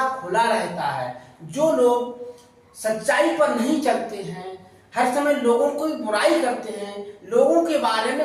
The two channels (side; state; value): both; identical; correlation 1.00